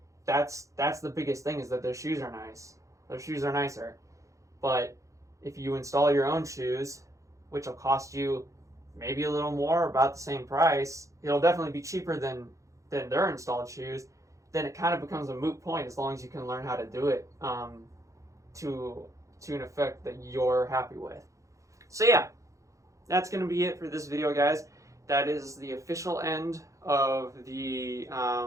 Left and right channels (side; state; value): left; late; 0.15 ms